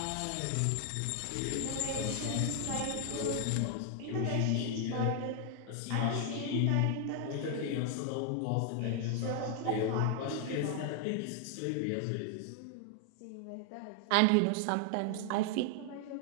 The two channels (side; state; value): both; different; correlation 0.00